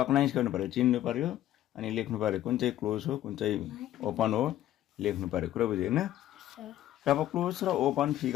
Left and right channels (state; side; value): quieter; right; 13.1 dB